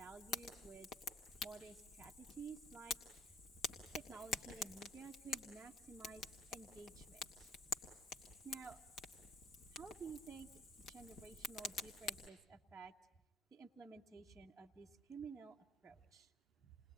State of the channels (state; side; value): normal; both; correlation 0.59